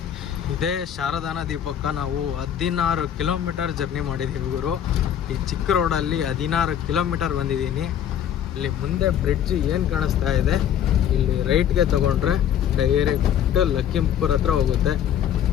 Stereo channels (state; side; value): quieter; right; 9.7 dB